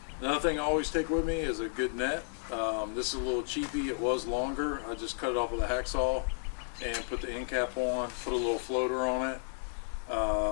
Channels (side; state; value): right; silent; 56 dB below the other